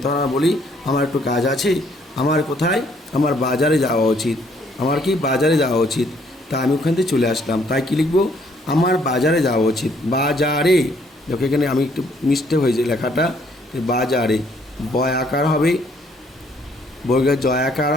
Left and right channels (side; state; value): both; normal; correlation 0.66